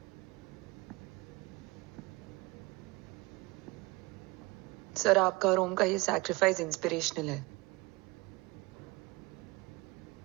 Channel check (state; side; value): quieter; left; 23.6 dB